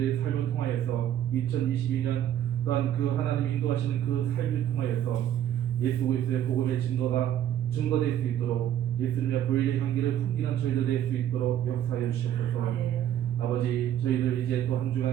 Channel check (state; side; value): quieter; left; 10.9 dB